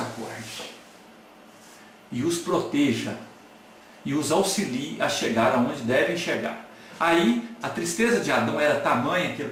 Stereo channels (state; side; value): identical; both; correlation 1.00